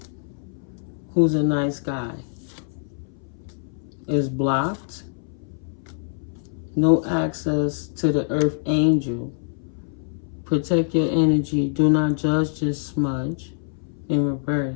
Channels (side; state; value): right; silent; 61 dB below the other